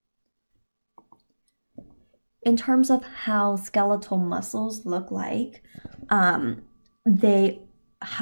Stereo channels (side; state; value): both; inverted; correlation -1.00